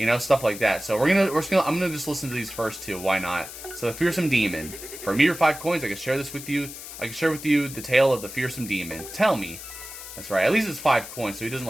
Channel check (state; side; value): noise; left; hiss, 12 dB below the sound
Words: know, stuff like that. So I'm gonna just listen to these first two. Why not? So the fearsome demon. For a mere 5 coins, I can share this with you. I can share with you the tale of the fearsome demon. Tell me. That's right. At least it's 5 coins, so he doesn't